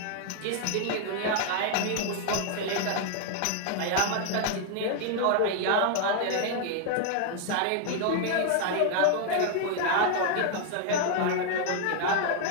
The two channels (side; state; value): both; different; correlation 0.00